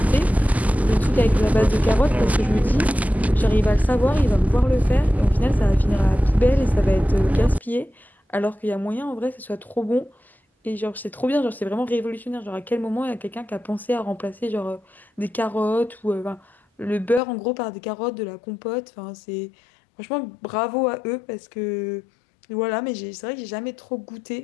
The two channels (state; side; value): drops out; right; at 17.2 s